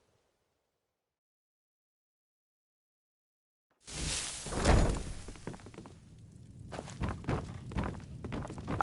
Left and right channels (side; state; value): both; identical; correlation 1.00